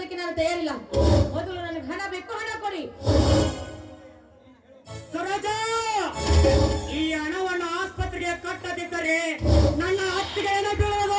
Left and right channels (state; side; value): identical; both; correlation 1.00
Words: ನಾನು ತಯಾರಿಲ್ಲ. ಮೊದಲು ನನಗೆ ಹಣ ಬೇಕು, ಹಣ ಕೊಡಿ. ಸರೋಜ, ಈ ಹಣವನ್ನು ಆಸ್ಪತ್ರೆಗೆ ಕಟ್ಟದಿದ್ದರೆ ನನ್ನ ಅತ್ತಿಗೆ ಏನೋ